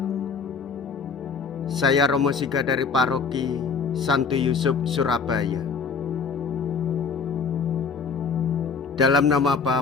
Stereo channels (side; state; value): right; quieter; 5.4 dB